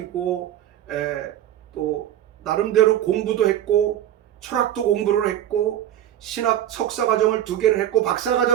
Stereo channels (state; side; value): quieter; left; 11.7 dB